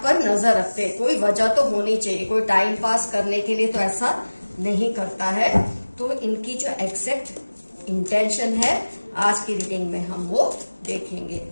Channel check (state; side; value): inverted; both; correlation -1.00